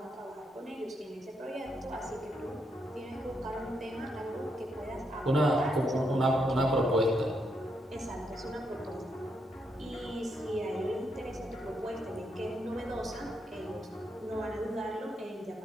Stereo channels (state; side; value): normal; both; correlation 0.79